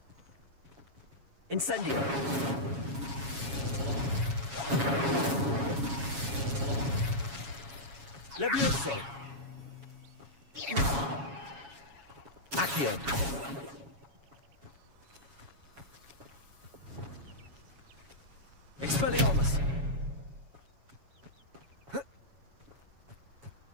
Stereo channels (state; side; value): late; left; 7.2 ms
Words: Incendio. Levioso. Accio. Expelliarmus.